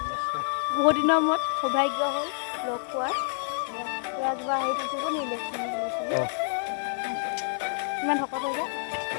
বহুত দিনৰ মূৰত সৌভাগ্য হ'ল লগ পোৱাৰ কিবা হেৰি থাকিব নি ইমান শকত হৈ যায়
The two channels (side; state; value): right; silent; 59 dB below the other